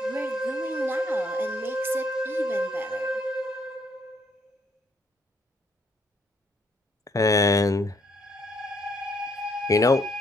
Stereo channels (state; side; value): normal; both; correlation 0.70